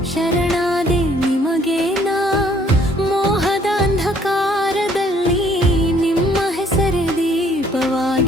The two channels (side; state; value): both; normal; correlation 0.62